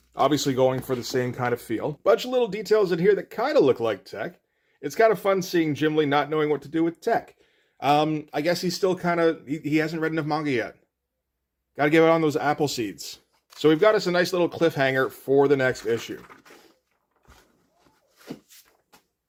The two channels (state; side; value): identical; both; correlation 1.00